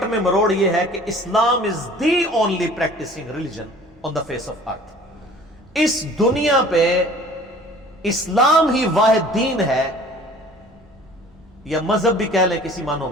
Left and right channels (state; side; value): normal; both; correlation 0.48